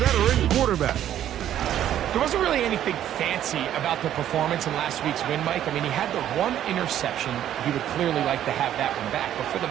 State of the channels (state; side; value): quieter; left; 11.2 dB